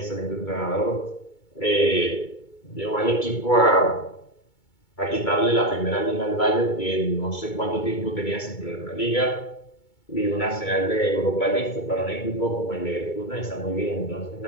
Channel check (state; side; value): late; right; 2.2 ms